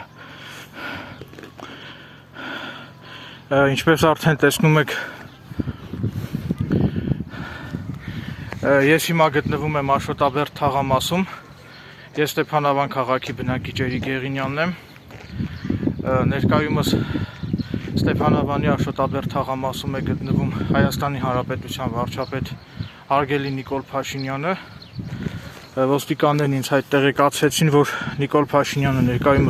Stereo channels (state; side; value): identical; both; correlation 1.00